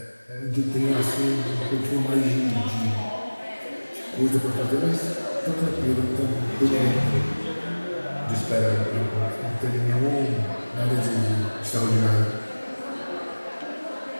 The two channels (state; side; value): inverted; both; correlation -1.00